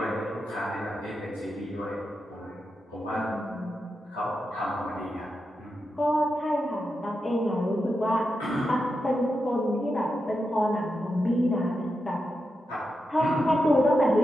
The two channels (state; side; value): normal; both; correlation 0.88